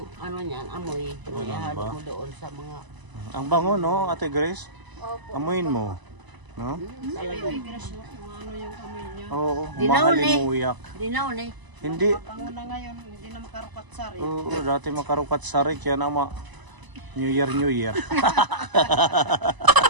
ano niyan, amoy. Ganun Ihalo ba? mo doon sa mga... Ang bango, no, Ate Grace? Opo. Amuin mo. No? Talaga. Ano yung amoy niya? Oo, Dinaon eh. mahalimuyak. Dinaon eh. Hindi. Pango na ngayon, hindi na makarukat sari. Oo, dati makarukat sarik yan ama. New Year, New Year.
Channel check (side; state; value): left; late; 1.0 ms